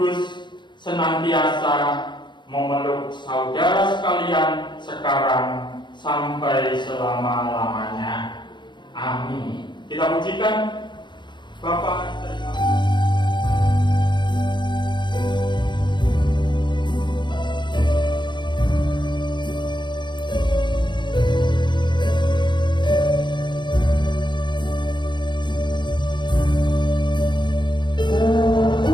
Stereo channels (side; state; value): right; late; 0.22 ms